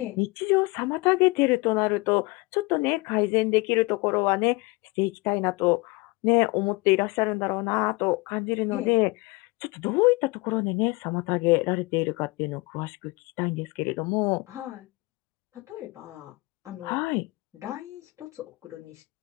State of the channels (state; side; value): quieter; right; 24.7 dB